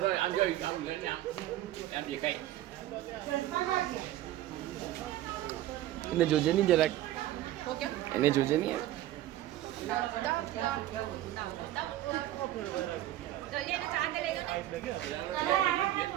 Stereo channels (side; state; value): left; quieter; 14.0 dB